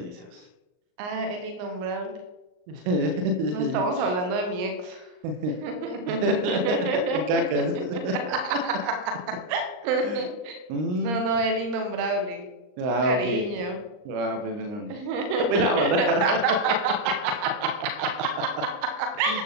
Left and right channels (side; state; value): left; late; 39 ms